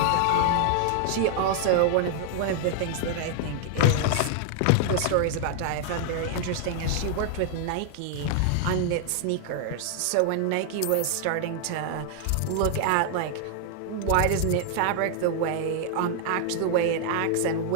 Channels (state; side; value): different; both; correlation 0.00